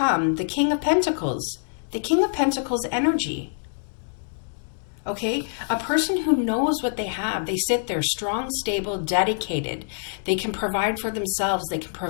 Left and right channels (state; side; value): silent; right; digital silence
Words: the King of Pentacles, the King of Pentacles energy. Okay, a person who knows what they have, they sit there strong, stable, dedicated. They can provide for themselves. They can